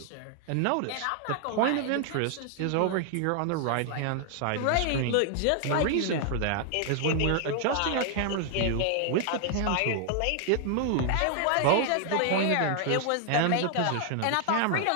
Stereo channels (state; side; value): different; both; correlation 0.00